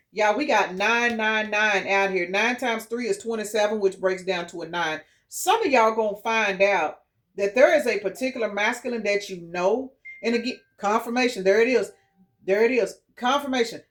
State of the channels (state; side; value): identical; both; correlation 1.00